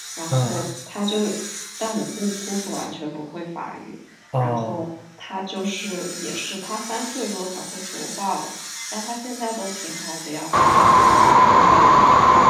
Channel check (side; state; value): both; identical; correlation 1.00